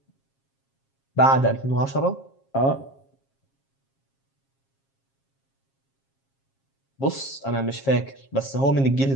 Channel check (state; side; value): late; right; 7.4 ms